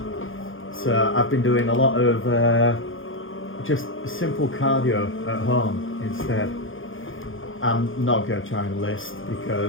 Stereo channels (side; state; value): right; late; 0.58 ms